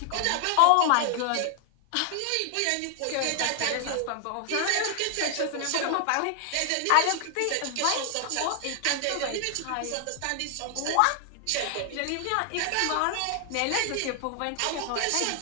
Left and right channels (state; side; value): different; both; correlation 0.00